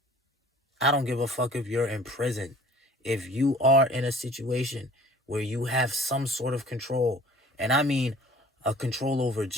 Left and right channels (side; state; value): both; normal; correlation 0.49